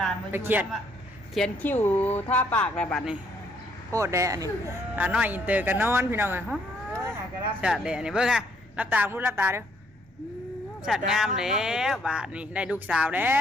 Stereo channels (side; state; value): both; normal; correlation 0.67